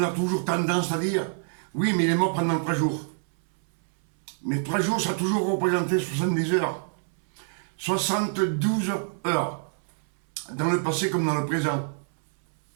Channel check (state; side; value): silent; left; 61 dB below the other